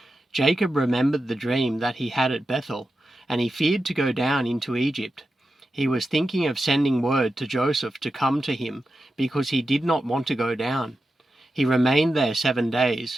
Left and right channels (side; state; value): both; normal; correlation 0.90